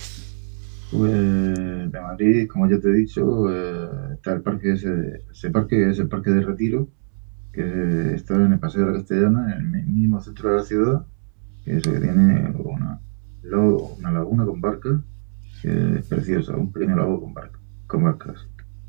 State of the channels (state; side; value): silent; left; 64 dB below the other